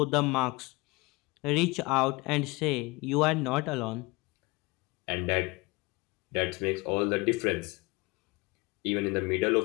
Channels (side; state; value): right; quieter; 24.7 dB